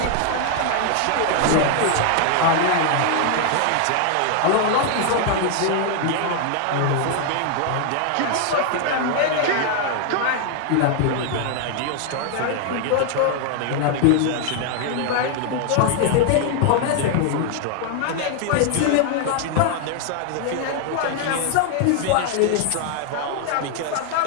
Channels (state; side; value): different; both; correlation 0.00